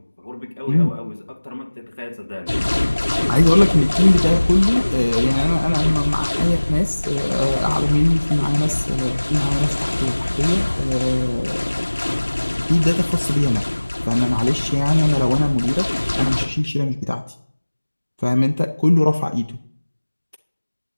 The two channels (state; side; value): inverted; both; correlation -1.00